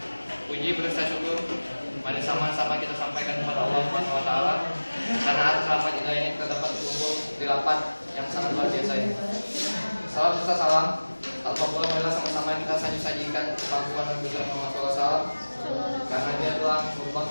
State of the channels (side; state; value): both; inverted; correlation -1.00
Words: Puji berasa syukur mari sama-sama kita sampaikan kepada Allah Subhanahu wa taala karena atas rahmat hidayahnya kita dapat berkumpul di rapat yang sangat luar biasa ini. Salam serta salam tanpa pula marilah sama-sama kita sajikan kepangkuan Nabi Muhammad SAW karena dia telah merubah